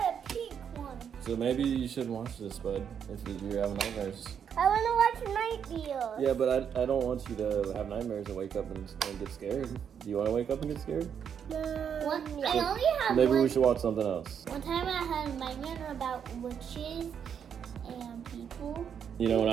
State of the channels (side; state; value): left; quieter; 7.9 dB